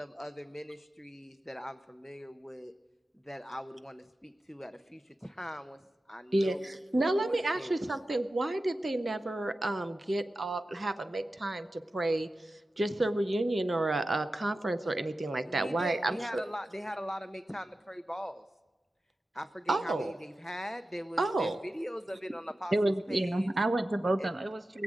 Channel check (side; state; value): both; normal; correlation 0.94